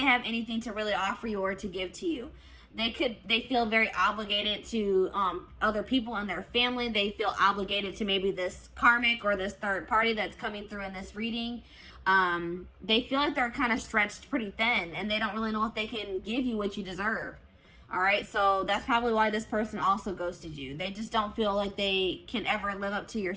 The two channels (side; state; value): both; identical; correlation 1.00